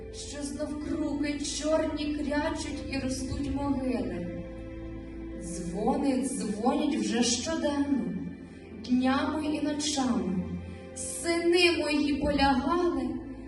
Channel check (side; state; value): both; identical; correlation 1.00